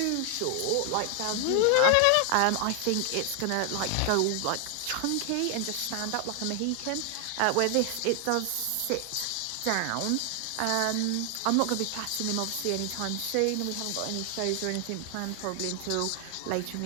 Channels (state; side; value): different; both; correlation 0.00